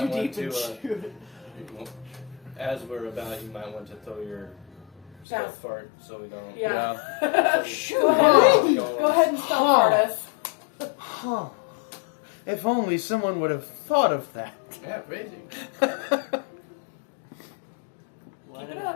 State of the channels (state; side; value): drops out; right; at 5.2 s